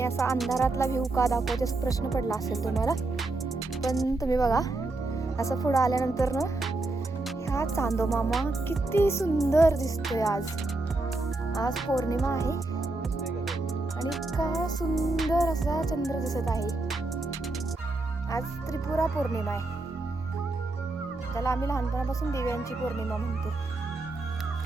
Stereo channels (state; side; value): quieter; left; 3.1 dB